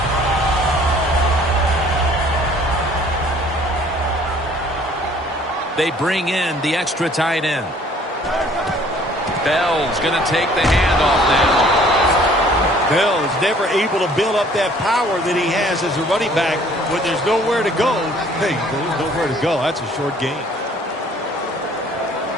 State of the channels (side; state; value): both; normal; correlation 0.56